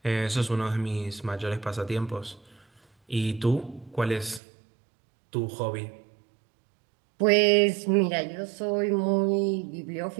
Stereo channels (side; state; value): left; drops out; at 4.4 s